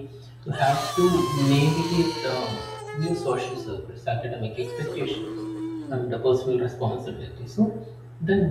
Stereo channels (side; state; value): both; identical; correlation 1.00